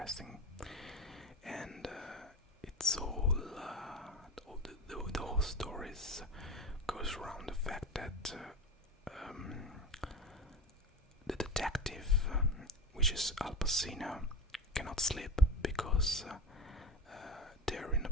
and it's all the whole story goes around the fact that the detective, which is Al Pacino, cannot sleep because they're in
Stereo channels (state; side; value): normal; both; correlation 0.28